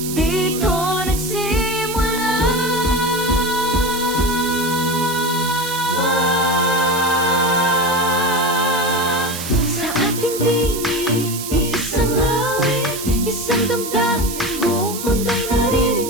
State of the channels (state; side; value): noise; right; hiss, 8 dB below the sound